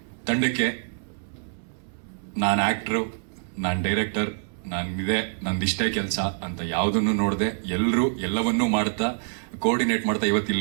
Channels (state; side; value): silent; left; 61 dB below the other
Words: ತಂಡಕ್ಕೆ, ನಾನು ಆಕ್ಟರ್, ನಾನು ಡೈರೆಕ್ಟರ್, ನಂದಿಷ್ಟೇ ಕೆಲಸ ಅಂತ ಯಾವುದನ್ನು ನೋಡದೆ ಎಲ್ಲರೂ ಎಲ್ಲವನ್ನೂ ಮಾಡ್ತಾ ಕೋಆರ್ಡಿನೇಟ್ ಮಾಡ್ತಾ ಇವತ್ತು